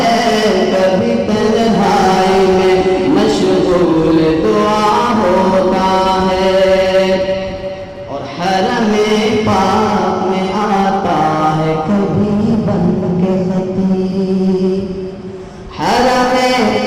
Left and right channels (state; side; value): identical; both; correlation 1.00